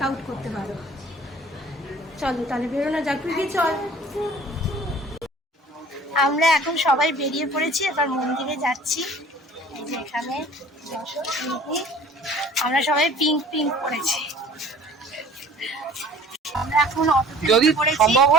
আউট করতে পারো। চলো তাহলে বেরোনো যাক। তুই চল। আমরা এখন সবাই বেরিয়ে পড়েছি, এবার মন্দিরে যাচ্ছি। এই যে এখানে আমরা সবাই পিঙ্ক পরেছি। আমরা এখন যদি সম্ভব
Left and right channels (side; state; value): both; normal; correlation 0.49